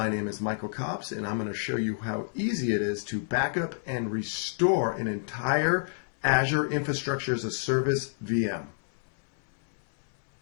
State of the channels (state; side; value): silent; right; 59 dB below the other